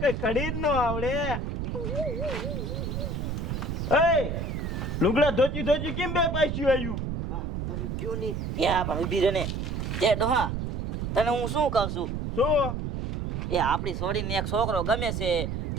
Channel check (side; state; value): right; noise; rumble, 3 dB below the sound